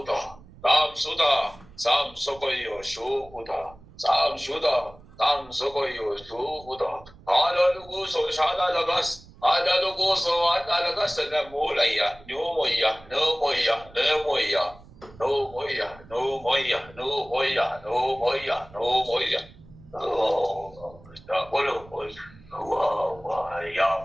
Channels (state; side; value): noise; right; rumble, 22 dB below the sound